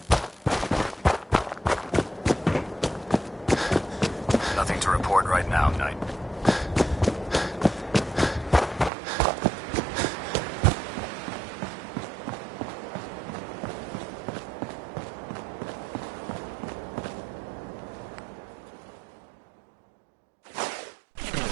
Nothing to report right now, Knight.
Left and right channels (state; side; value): drops out; left; at 8.9 s